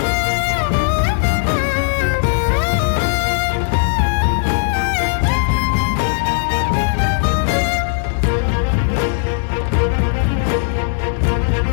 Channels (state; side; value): silent; right; digital silence